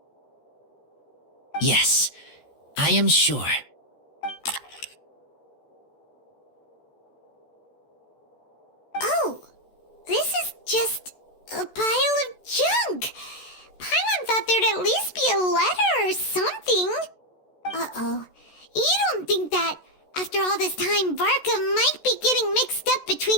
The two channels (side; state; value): right; late; 14 ms